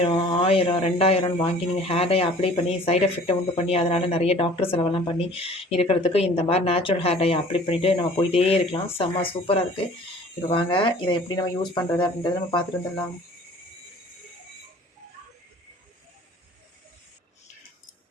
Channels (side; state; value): both; normal; correlation 0.49